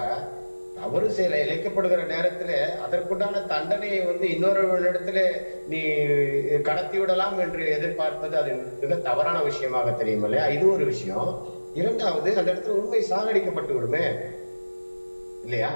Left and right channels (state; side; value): inverted; both; correlation -1.00